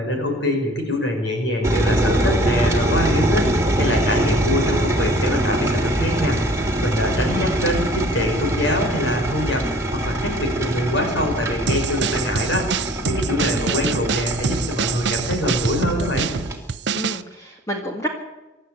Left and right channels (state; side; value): normal; both; correlation 0.50